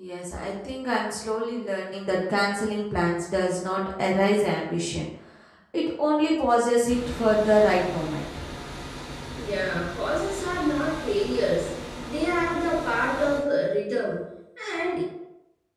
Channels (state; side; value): identical; both; correlation 1.00